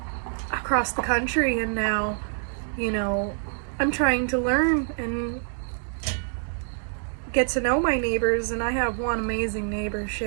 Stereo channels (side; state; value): left; silent; digital silence